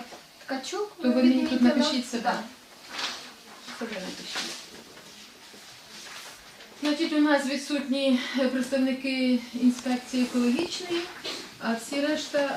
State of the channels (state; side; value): identical; both; correlation 1.00